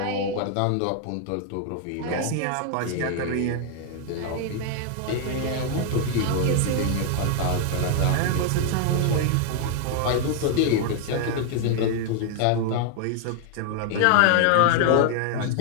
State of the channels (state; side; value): different; both; correlation 0.00